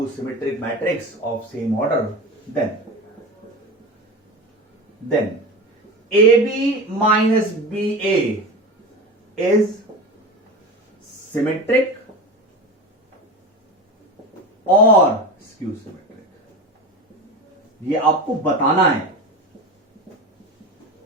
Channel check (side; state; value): both; normal; correlation 0.28